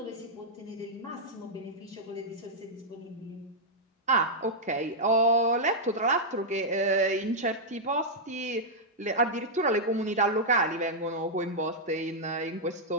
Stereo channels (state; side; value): normal; both; correlation -0.06